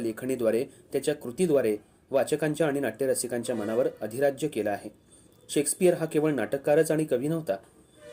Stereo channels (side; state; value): both; identical; correlation 1.00